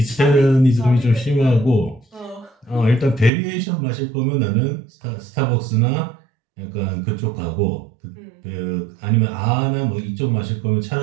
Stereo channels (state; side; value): drops out; left; at 3.3 s